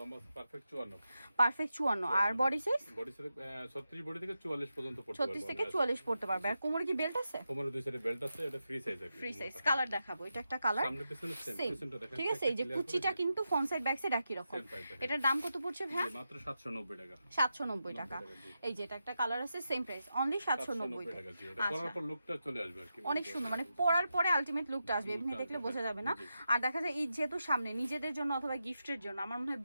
লম্বা পারফেক্ট 54। পারফেক্ট 54। আর body size? Body size 36 body থেকে 44 পর্যন্ত পড়তে পারবে। 36 থেকে 44 পড়তে পারবে। আর কোমরে কি বেল্ট আছে? কোমরে দুই সাইডে বেল্ট আছে, এটা ফ্রি সাইজ আছে। Free size. কালার দেখাবো, এটা একটা কালার সামনে পিছনে সেম, পিছনটা দেখেন, ঠিক আছে। এই যে কুচিটা কিন্তু ফ্রন্ট সাইড ব্যাক সাইড একই রকম। এটার দাম কত পড়ছে ভাই? মাত্র 790 টাকা। 790 টাকা। এই যে এটা একটা কালার আছে, সেম প্রাইস, অনলি 790 টাকা। আচ্ছা, পরার পর লুকটা চলে আসবে আর কি, অনেক সুন্দর, মানে পরার পরে আলটিমেট লুকটা আসবে, এমনি দেখলে বোঝা যাবে না। আর দেখা যায় এই যেহেতু সামনে নিজেদের জন্য অথবা গিফটের জন্য আমার মনে হয়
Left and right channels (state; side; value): inverted; both; correlation -0.88